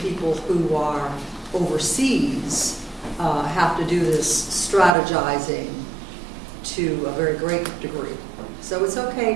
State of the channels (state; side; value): drops out; left; at 5.0 s